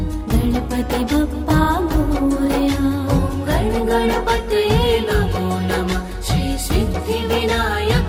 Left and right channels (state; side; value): identical; both; correlation 1.00